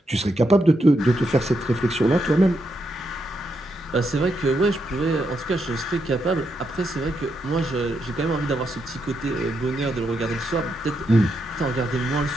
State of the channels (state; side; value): normal; both; correlation 0.81